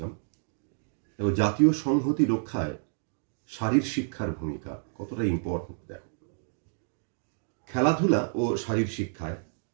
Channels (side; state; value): left; silent; digital silence